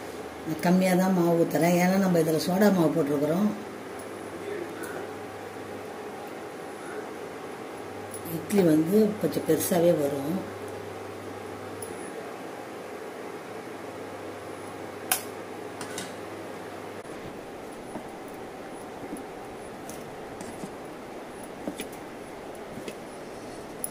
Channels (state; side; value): identical; both; correlation 1.00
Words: கம்மியாக தான் மாவு ஊற்றுறேன். ஏன்னா நம்ம இதில் சோடா மாவு போட்டிருக்கிறோம். இட்லி வந்து கொஞ்சம் பெருசாகவே வரும்.